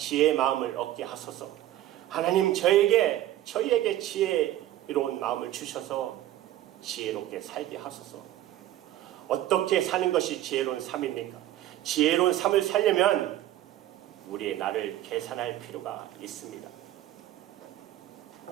마음을 얻게 하소서. 하나님 저희에게 지혜로운 마음을 주셔서 지혜롭게 살게 하소서. 어떻게 사는 것이 지혜로운 삶입니까? 지혜로운 삶을 살려면 우리의 나를 계산할 필요가 있습니다.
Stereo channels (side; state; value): left; quieter; 13.6 dB